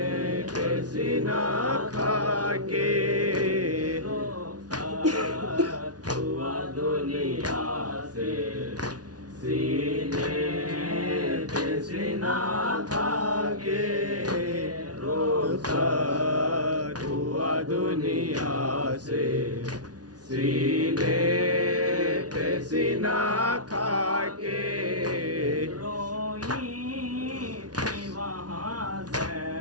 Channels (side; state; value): left; late; 0.69 ms